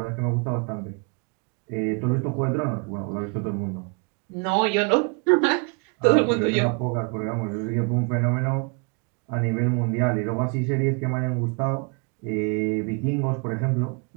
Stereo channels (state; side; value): quieter; left; 34.9 dB